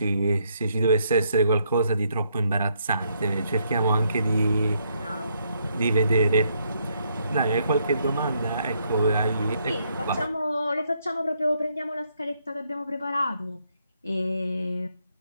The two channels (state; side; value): inverted; both; correlation -0.74